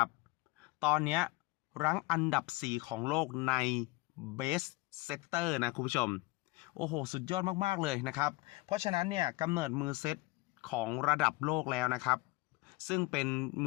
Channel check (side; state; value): right; quieter; 22.1 dB